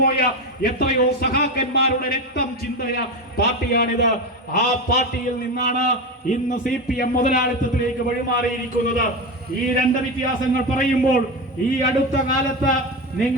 പോയ എത്രയോ സഖാക്കന്മാരുടെ രക്തം ചിന്തയ പാർട്ടിയാണിത്. ആ പാർട്ടിയിൽ നിന്നാണ് ഇന്ന് CPM മുതലാളിത്തത്തിലേക്ക് വഴിമാറിയിരിക്കുന്നത്. ഈ 2 വ്യത്യാസങ്ങൾ പറയുമ്പോൾ ഈ അടുത്ത കാലത്ത്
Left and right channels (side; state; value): both; normal; correlation 0.18